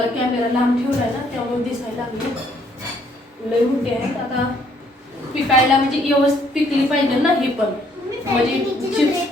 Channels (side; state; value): both; normal; correlation 0.66